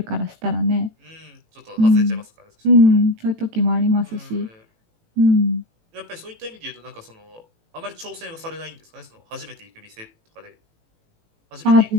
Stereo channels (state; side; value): late; left; 18 ms